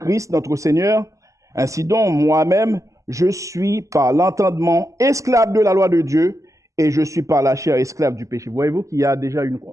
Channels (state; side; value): late; left; 0.16 ms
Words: notre Seigneur. Ainsi donc, moi-même, je suis par l'entendement esclave de la loi de Dieu et je suis par la chair esclave du péché. Voyez-vous qu'il y a déjà